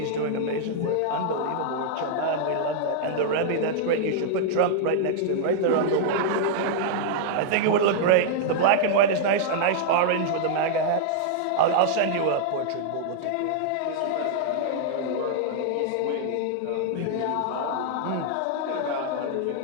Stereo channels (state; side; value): different; both; correlation -0.01